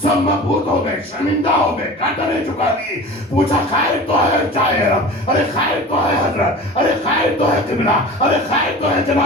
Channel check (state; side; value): normal; both; correlation 0.37